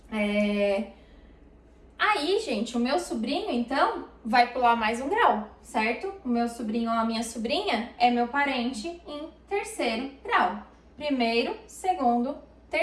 Aí, gente, o meu sobrinho, então, vai pular mais um grau, certo? O meu sobrinho ou a minha sobrinha é meu parente em terceiro grau. Primeiro, segundo,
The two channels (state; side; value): identical; both; correlation 1.00